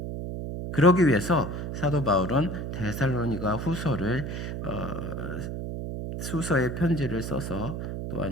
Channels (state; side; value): noise; right; hum, 5 dB below the sound